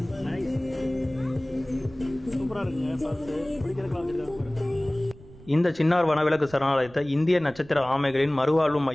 இந்த சின்னார் வனவிலங்கு சரணாலயத்தை இந்திய நட்சத்திர ஆமைகளின் மறுவாழ்வு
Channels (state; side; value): noise; right; rumble, 21 dB below the sound